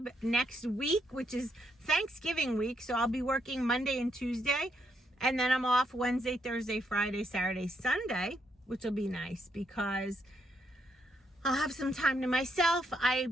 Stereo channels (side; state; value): both; normal; correlation 0.77